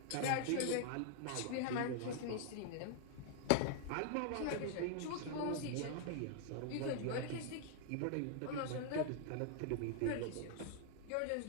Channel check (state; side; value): different; both; correlation 0.00